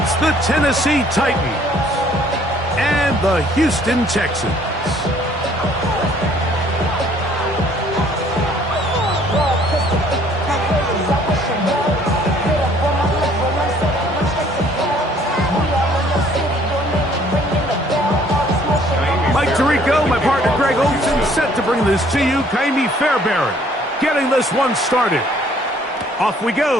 the Tennessee Titans and the Houston Texans. Set to bring this to you, Kaimi Fairbairn, getting this one started. Off we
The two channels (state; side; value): normal; both; correlation 0.59